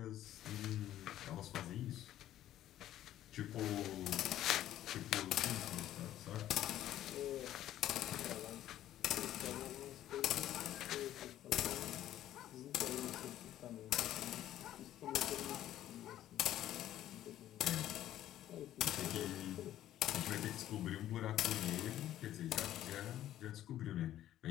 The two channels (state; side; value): quieter; right; 12.7 dB